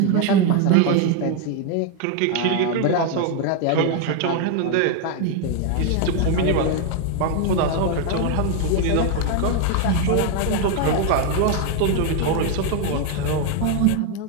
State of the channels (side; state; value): both; different; correlation 0.01